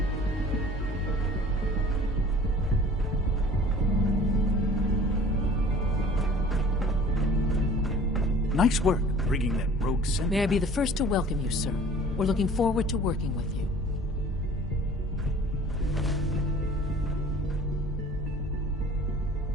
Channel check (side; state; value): both; normal; correlation 0.48